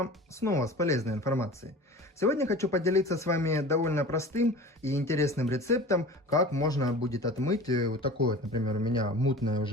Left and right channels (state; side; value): normal; both; correlation 0.38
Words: снова с полезной информацией. Сегодня хочу поделиться с вами довольно простым и интересным рецептом, как можно будет отмыть вот такое, например, у меня мутное